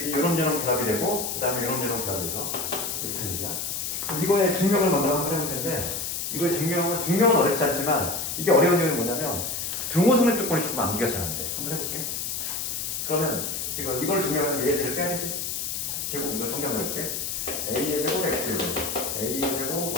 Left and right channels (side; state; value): left; noise; hiss, 3 dB below the sound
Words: 요놈저놈 결합이 되고 그 다음에 요놈저놈 결합이 돼서 이렇게 된 얘기야. 그럼 이거의 증명을 먼저 한번 해볼 텐데 이거의 증명은 어렵지 않지만 이게 어려운 이유는 뭐냐면 등호성립 조건이 조금 암기가 잘 안 돼. 한번 해볼게. 그러면 지금 이걸 증명하면 A의 제를 빼야 되지. 제곱 이거 정리한번 해볼게. A의 제곱 X의 제곱 A의